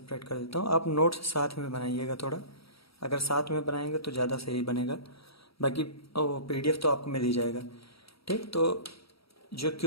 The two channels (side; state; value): right; late; 0.76 ms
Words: कर देता हूँ, आप नोट्स साथ में बनाइएगा थोड़ा। अगर साथ में बनाएंगे तो ज़्यादा सही बनेगा, बाकी पीडीएफ तो आपको मिल ही जाएगा। ठीक, तो जो